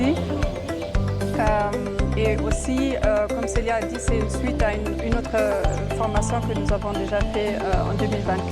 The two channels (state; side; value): identical; both; correlation 1.00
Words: Et aussi, comme Célia a dit, c'est une suite à une autre formation que nous avons déjà fait en